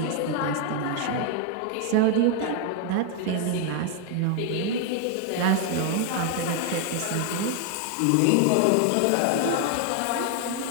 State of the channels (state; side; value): different; both; correlation 0.00